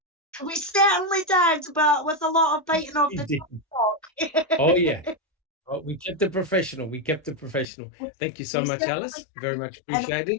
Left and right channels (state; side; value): drops out; right; at 7.7 s